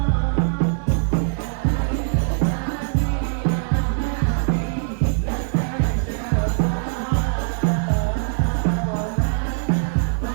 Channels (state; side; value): silent; left; digital silence